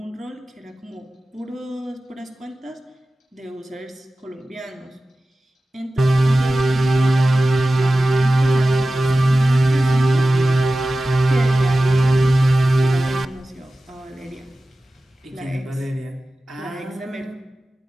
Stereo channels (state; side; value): normal; both; correlation 0.95